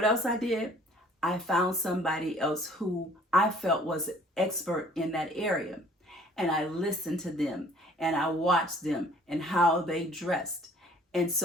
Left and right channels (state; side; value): normal; both; correlation 0.55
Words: else I did? I found somebody else who I felt was an expert in that area. And I listened to them and I watched them and how they dressed. And